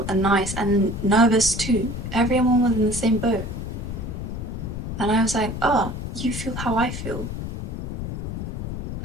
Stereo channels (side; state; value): left; noise; rumble, 5 dB below the sound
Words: and nice and nervous too. Everyone was in the same boat. And I was like, oh, you feel how I feel.